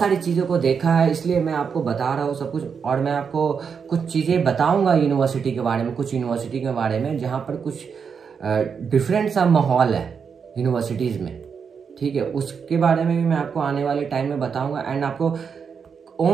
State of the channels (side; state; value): left; quieter; 6.4 dB